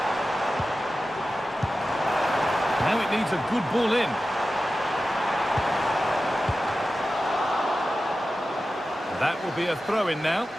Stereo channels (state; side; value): normal; both; correlation 0.94